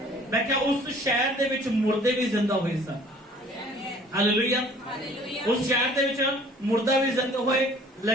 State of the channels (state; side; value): normal; both; correlation 0.52